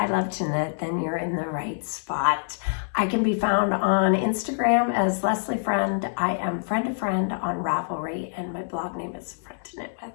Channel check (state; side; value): silent; right; 61 dB below the other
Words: love to knit, then you're in the right spot. I can be found on Instagram as Leslie Friend. I am friend to friend on Ravelry and my blog name is Friend to Knit With.